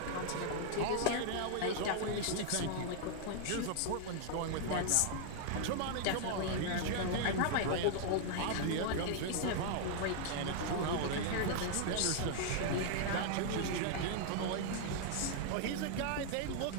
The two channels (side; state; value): both; different; correlation 0.00